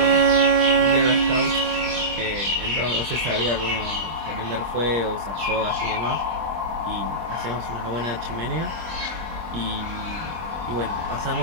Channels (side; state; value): left; late; 24 ms